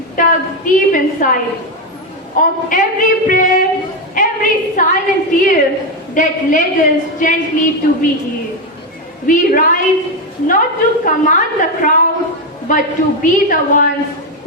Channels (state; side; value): normal; both; correlation 0.08